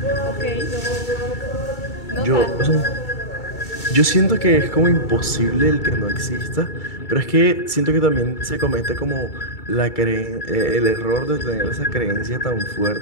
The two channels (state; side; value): late; right; 2.3 ms